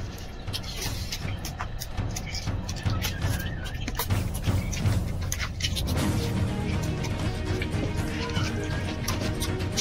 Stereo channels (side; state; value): both; identical; correlation 1.00